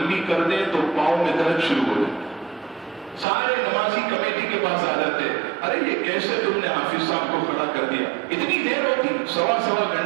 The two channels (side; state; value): left; drops out; at 3.2 s